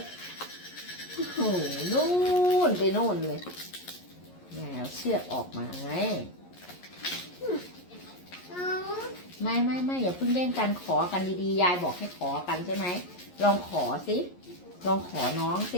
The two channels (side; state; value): right; late; 11 ms